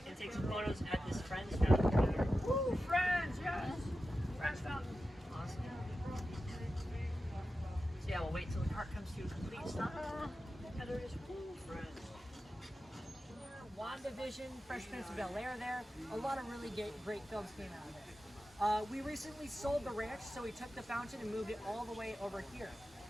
and take some photos at this Friends fountain. Woo, Friends, yes! Friends fountain. Awesome. So yeah, we'll wait till the cart comes to a complete stop. And there it is. Woo, Friends. WandaVision, Fresh Prince of Bel-Air there. A lot of really great films came out of there. We recently sold the ranch, so we took the fountain and moved it all the way over here.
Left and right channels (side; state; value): both; normal; correlation 0.92